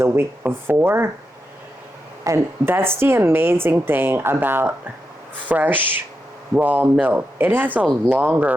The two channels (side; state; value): both; normal; correlation 0.86